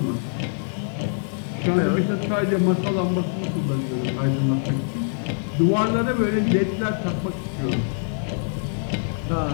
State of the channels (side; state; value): right; silent; 62 dB below the other